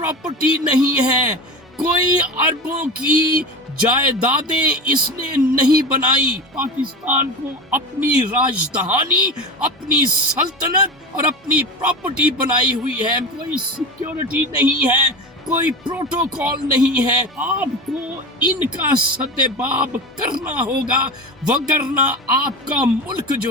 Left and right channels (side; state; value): both; normal; correlation 0.27